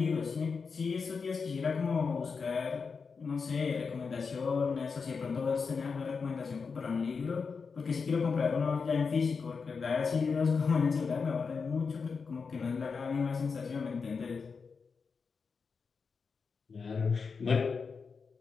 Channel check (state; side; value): quieter; right; 5.2 dB